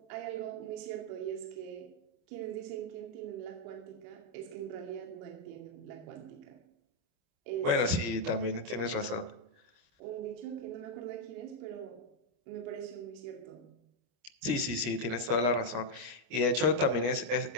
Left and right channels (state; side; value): late; left; 26 ms